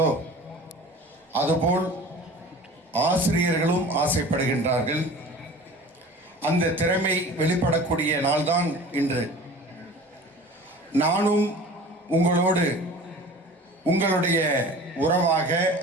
அதுபோல் ஆசிரியர்களும் ஆசைப்படுகின்றார்கள். அந்த திறமை வெளிப்படக்கூடிய நாள்தான் இன்று. நானும் உங்களோடு உங்களுடைய உறவாக,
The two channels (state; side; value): normal; both; correlation 0.40